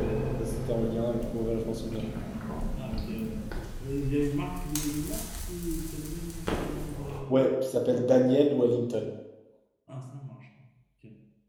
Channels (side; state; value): both; identical; correlation 1.00